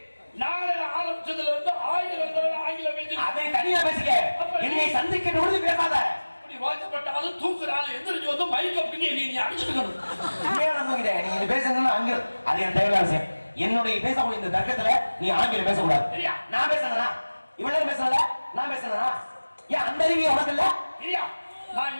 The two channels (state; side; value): inverted; both; correlation -1.00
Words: நாளை ஆரம்பிச்சதுல இருந்து 1000 தடவை ஆங்கிலம் பேசி அதை தனியா பேசிக்க. என்னை சந்திக்கிற பொழுது பேசாத. அப்படி வாக்கப்பட்டாலும் தூக்குறாலும் எந்திரிச்சு வந்து மைக் அப்படின்னு நீ அடிச்சுக்கணும். நீங்க பேசணும்னா அங்க அது என் தேவையான விஷயம். என்னுடைய பேசக்கூடிய இந்த தர்க்கத்துல நீ ஆங்கிலம் பேசக்கூடாது. நான் பேசுறேனா? இவ்வளவு பேசல, நான் பேசுறேனா? ஏன் அந்த அறிவு உனக்கு இல்ல? இல்லையா? நான்